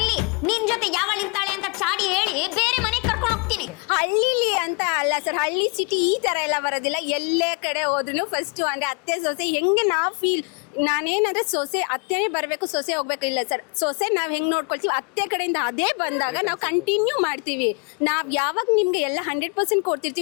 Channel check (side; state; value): right; quieter; 33.4 dB